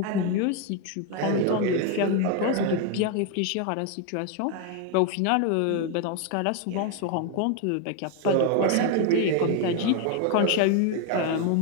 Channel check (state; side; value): different; both; correlation 0.01